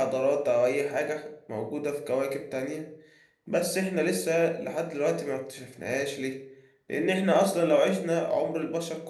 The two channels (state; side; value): identical; both; correlation 1.00